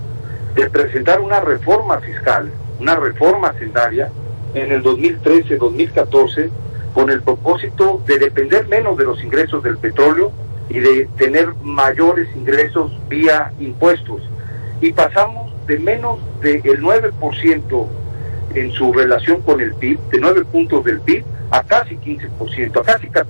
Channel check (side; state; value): both; inverted; correlation -1.00